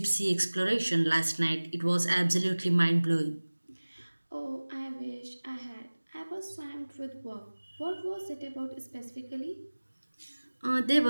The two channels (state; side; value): inverted; both; correlation -1.00